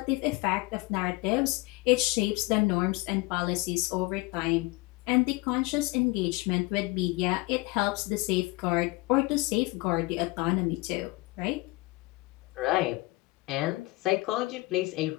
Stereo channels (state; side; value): quieter; right; 23.1 dB